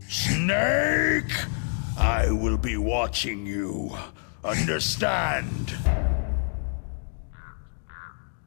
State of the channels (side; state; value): right; silent; digital silence